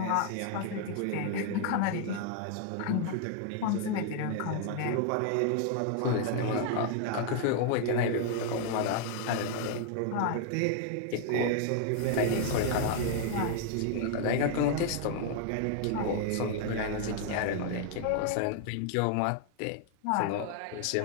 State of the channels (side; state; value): both; different; correlation 0.00